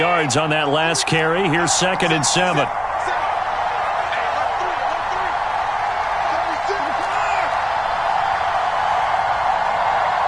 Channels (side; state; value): both; identical; correlation 1.00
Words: on that last carry. Here's 2nd and 7.